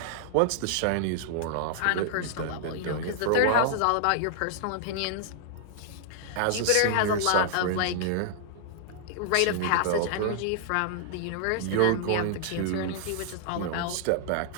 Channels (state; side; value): different; both; correlation -0.01